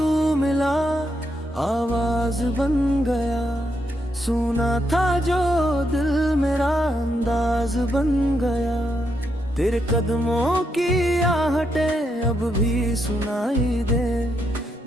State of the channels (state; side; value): normal; both; correlation 0.80